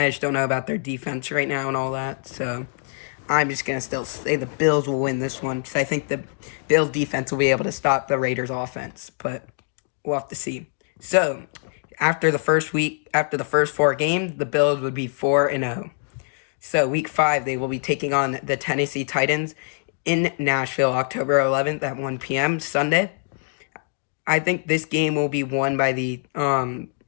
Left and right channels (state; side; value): silent; right; 59 dB below the other